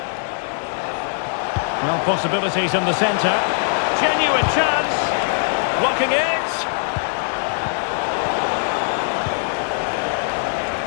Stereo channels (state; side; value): silent; right; digital silence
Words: Well, possibilities in the centre. Genuine chance. Blocking it.